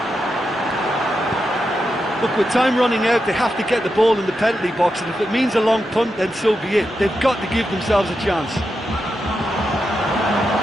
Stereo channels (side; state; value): both; normal; correlation 0.87